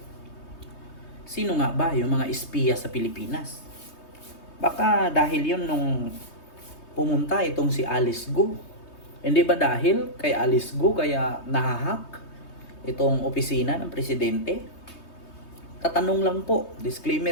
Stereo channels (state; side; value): late; right; 3.2 ms